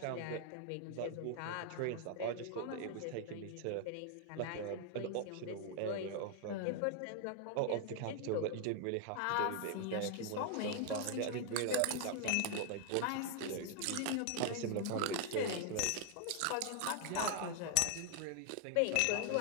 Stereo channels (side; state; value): both; different; correlation 0.00